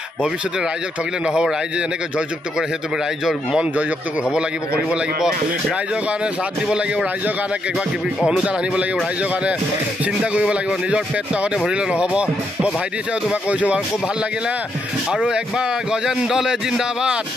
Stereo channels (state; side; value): normal; both; correlation 0.78